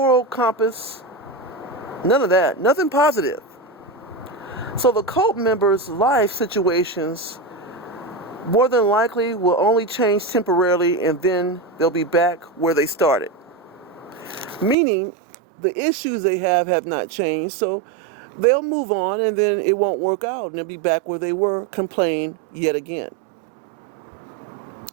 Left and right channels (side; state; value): left; drops out; at 14.8 s